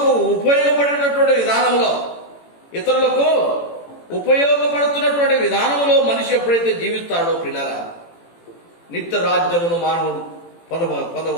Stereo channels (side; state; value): right; late; 18 ms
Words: ఉపయోగపడుతున్నటువంటి విధానంలో మనిషి ఎప్పుడైతే జీవిస్తాడో పిల్లల నిత్య రాజ్యమును మానవుడు